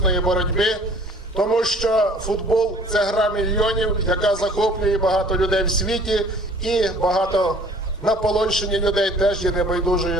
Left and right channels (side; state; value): both; normal; correlation 0.52